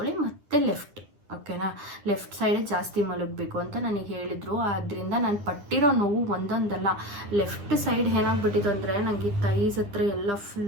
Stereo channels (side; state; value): left; late; 9.9 ms